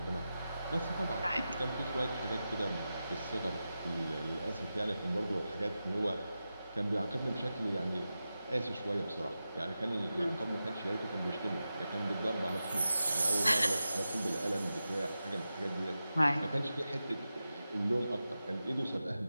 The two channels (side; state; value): both; inverted; correlation -0.92